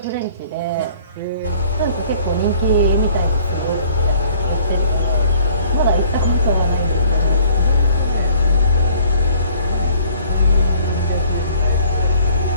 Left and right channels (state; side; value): inverted; both; correlation -0.55